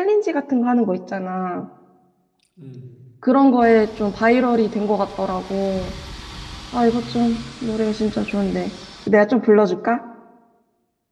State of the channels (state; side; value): identical; both; correlation 1.00